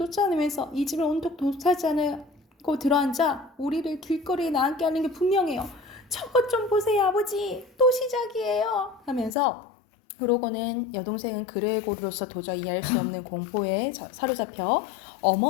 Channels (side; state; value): right; drops out; at 9.3 s